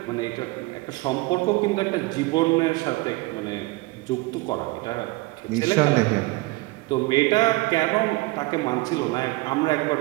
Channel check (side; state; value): left; quieter; 22.2 dB